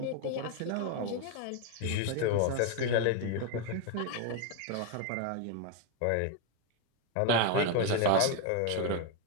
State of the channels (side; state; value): both; different; correlation 0.01